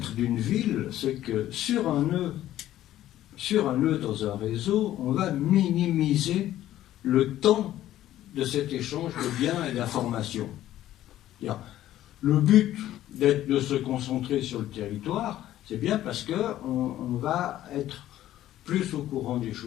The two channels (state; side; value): quieter; right; 13.3 dB